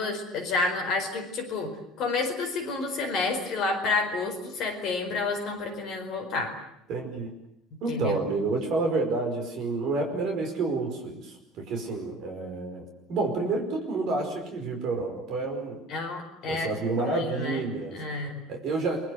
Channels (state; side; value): normal; both; correlation 0.41